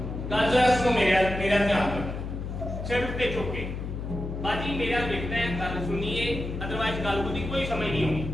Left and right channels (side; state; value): left; noise; hum, 6 dB below the sound